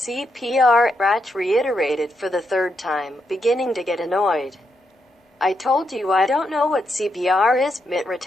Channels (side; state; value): both; normal; correlation 0.81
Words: Bratch reiterated for the third time, beginning to get annoyed. I told you I don't know what CPR is, Mitt